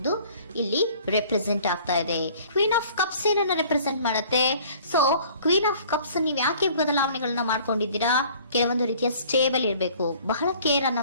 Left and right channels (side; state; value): both; inverted; correlation -0.52